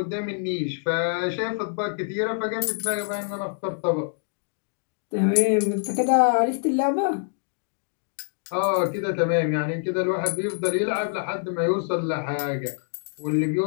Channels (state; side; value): silent; right; digital silence